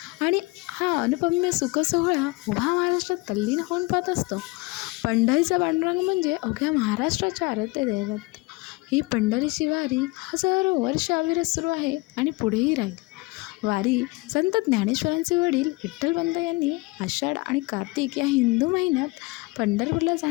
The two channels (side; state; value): right; quieter; 24.3 dB